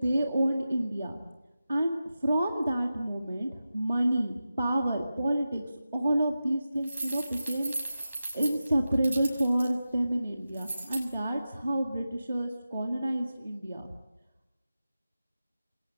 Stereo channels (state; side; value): inverted; both; correlation -0.92